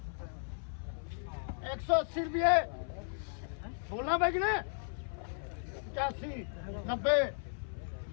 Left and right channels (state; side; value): silent; right; 54 dB below the other